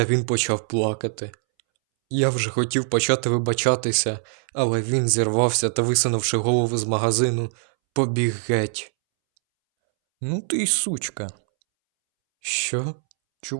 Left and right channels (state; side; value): silent; left; 63 dB below the other